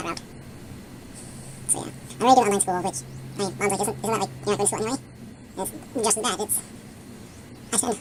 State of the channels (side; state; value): both; identical; correlation 1.00